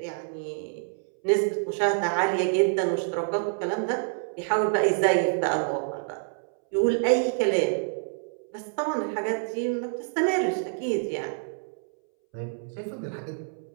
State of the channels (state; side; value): silent; left; 60 dB below the other